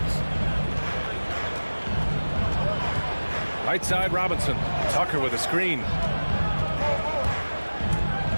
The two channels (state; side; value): inverted; both; correlation -1.00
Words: Right side, Robinson. Tucker with a screen.